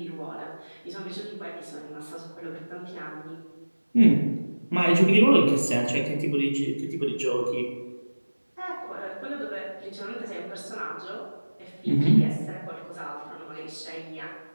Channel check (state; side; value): inverted; both; correlation -1.00